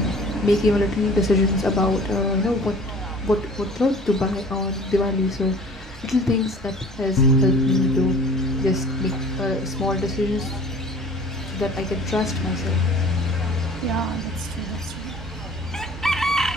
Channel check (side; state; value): both; normal; correlation 0.47